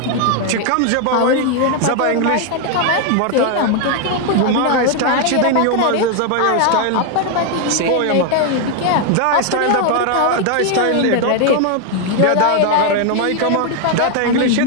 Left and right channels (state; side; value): different; both; correlation 0.01